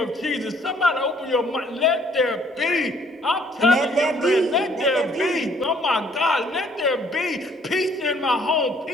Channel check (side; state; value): both; normal; correlation 0.62